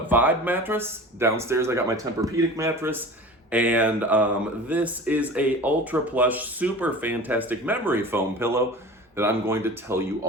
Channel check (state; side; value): normal; both; correlation 0.38